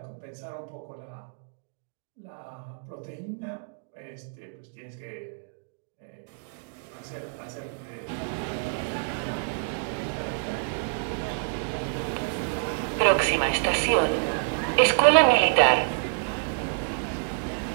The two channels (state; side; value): silent; left; digital silence